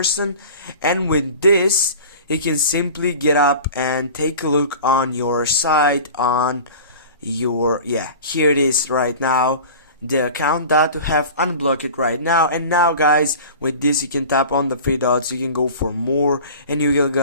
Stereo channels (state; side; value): inverted; both; correlation -0.39